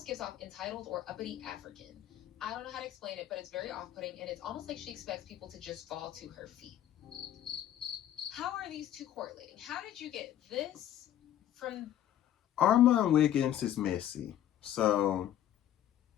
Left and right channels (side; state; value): right; quieter; 11.6 dB